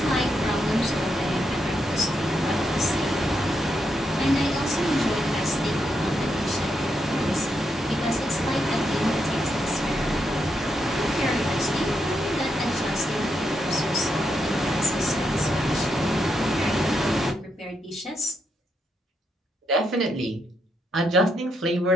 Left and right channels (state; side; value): normal; both; correlation 0.81